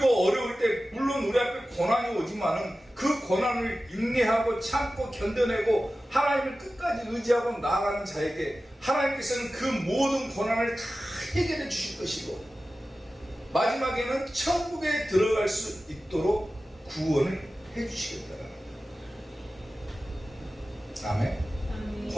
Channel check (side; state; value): both; normal; correlation 0.95